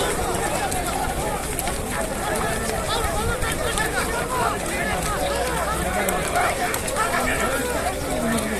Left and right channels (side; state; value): both; identical; correlation 1.00